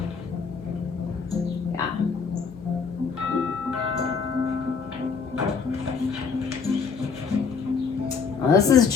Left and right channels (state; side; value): quieter; right; 5.6 dB